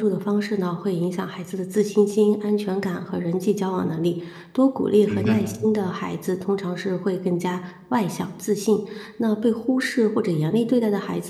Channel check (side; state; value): both; identical; correlation 1.00